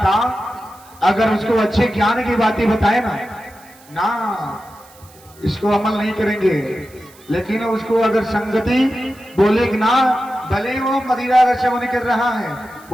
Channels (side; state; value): right; noise; hiss, 25 dB below the sound